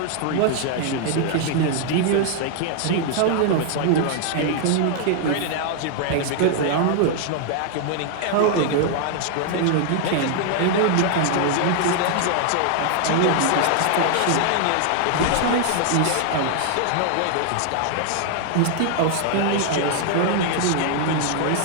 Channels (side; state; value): both; different; correlation 0.00